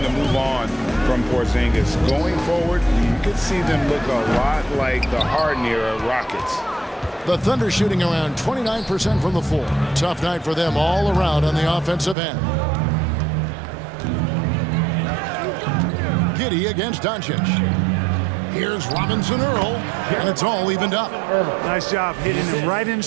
to move on from Porzingis. Going forward, you could see them look a lot like the Harden-era Rockets. The Thunder shooting around 29% from the floor. Tough night for them all around on the offensive end. Giddey against Doncic. Here's Robinson Earl, and it's all evened up. Nice job hitting him right in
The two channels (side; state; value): left; drops out; at 12.2 s